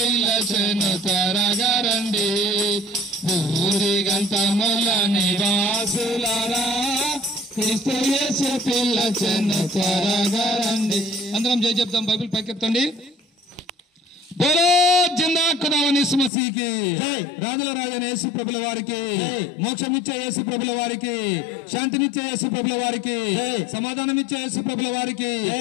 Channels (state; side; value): drops out; right; at 16.3 s